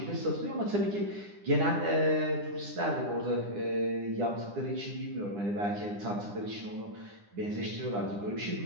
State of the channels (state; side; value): late; left; 9.9 ms